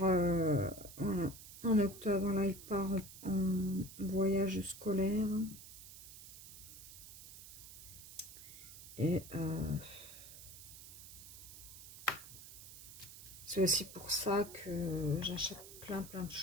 En octobre, là, il part en voyage scolaire. Et c'est aussi pour ça que j'achète plein de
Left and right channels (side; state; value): right; noise; hiss, 14 dB below the sound